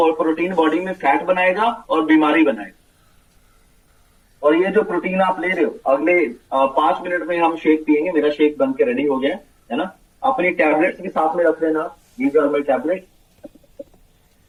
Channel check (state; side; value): identical; both; correlation 1.00